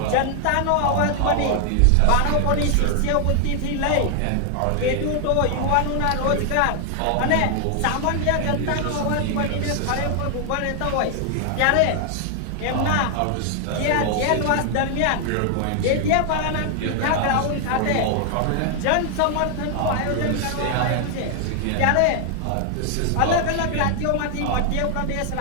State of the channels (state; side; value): different; both; correlation 0.00